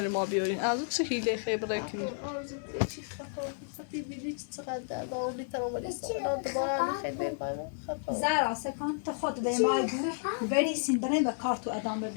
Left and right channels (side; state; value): right; silent; digital silence